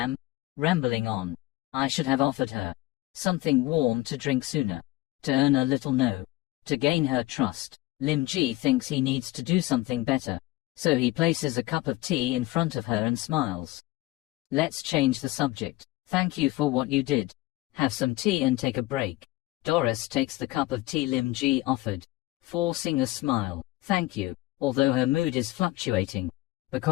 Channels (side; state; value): right; quieter; 18.9 dB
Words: rambling on. I should have offered her something warm to drink sooner, to earn a little no, to gain her trust. Lim Ji thinks he needs to do something better, so he places a cup of tea in front of her and smiles. Let's change the subject. Thank you for what you did. Have some tea and take a break. Doris takes the cup of tea Lim Ji offered, forcing a smile. Thank you. Although her mood is fluctuating